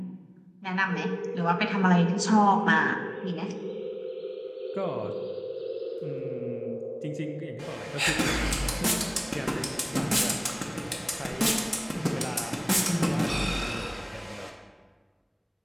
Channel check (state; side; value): identical; both; correlation 1.00